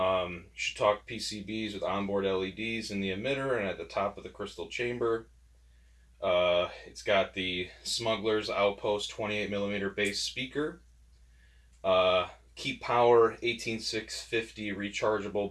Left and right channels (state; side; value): identical; both; correlation 1.00